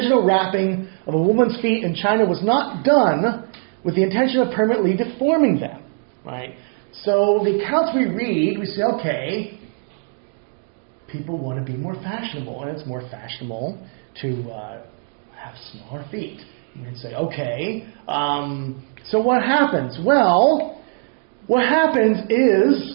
wrapping of a woman's feet in China was not done with the intention of permanently deforming them, right? So the accounts we read, we say, okay, people want to be more fashionable, and it's more fashionable to have smaller feet. And we'd say, okay, so what happens? Well, what happens is,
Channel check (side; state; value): left; silent; 55 dB below the other